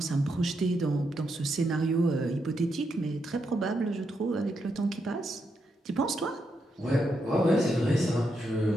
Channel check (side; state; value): both; normal; correlation 0.82